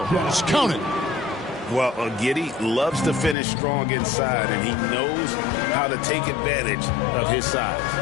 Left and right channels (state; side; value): drops out; right; at 3.4 s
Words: Count it. Well, Giddy loves to finish strong inside, and he knows how to take advantage of his size.